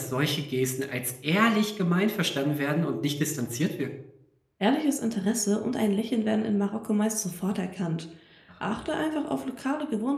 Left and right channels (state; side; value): identical; both; correlation 1.00